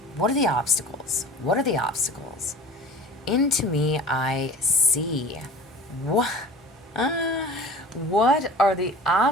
What are the obstacles? What are the obstacles? Into me, I see. What? What are the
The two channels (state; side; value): normal; both; correlation 0.40